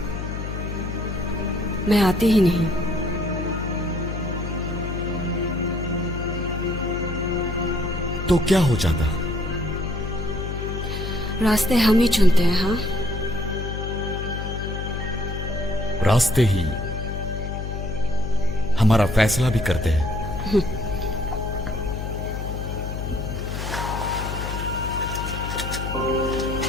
मैं आती ही नहीं। तो क्या हो जाता? रास्ते हम ही चुनते हैं। हाँ, रास्ते ही हमारा फैसला भी करते हैं।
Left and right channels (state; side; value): noise; left; hum, 5 dB below the sound